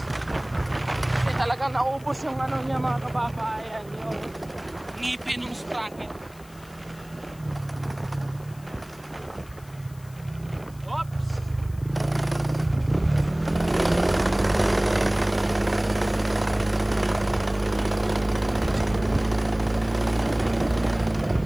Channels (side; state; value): left; noise; hiss, 25 dB below the sound